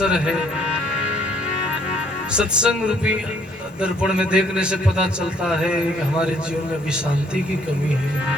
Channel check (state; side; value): normal; both; correlation 0.64